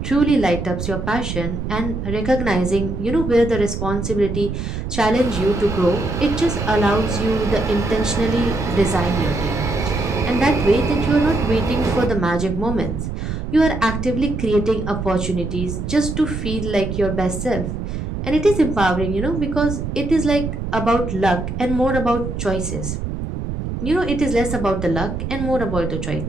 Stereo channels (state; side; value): noise; right; rumble, 5 dB below the sound